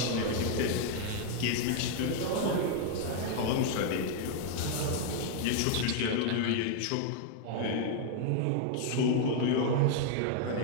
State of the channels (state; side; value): different; both; correlation 0.00